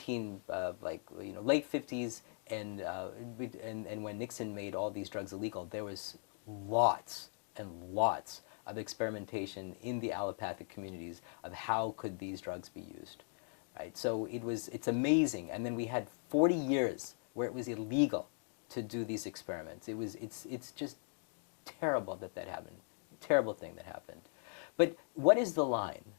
50s and when Nixon made all these drugs illegal, there was lots and lots of experimentation in the allopathic communities of how could these drugs be used, right? So it's amazing. And then we had 40 years where it was illegal to do these experiments. It's just terrible that happened. Terrible thing that happened. But what is the line?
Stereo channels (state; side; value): silent; right; 52 dB below the other